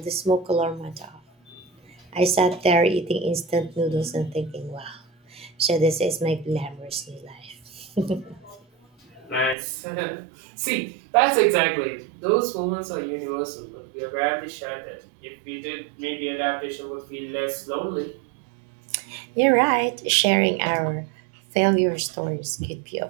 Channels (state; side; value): drops out; left; at 9.6 s